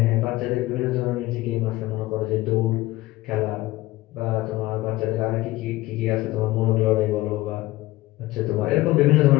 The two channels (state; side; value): quieter; right; 18.1 dB